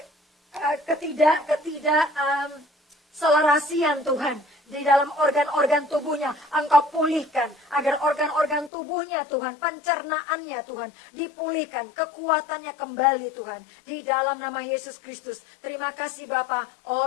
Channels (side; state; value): right; drops out; at 8.7 s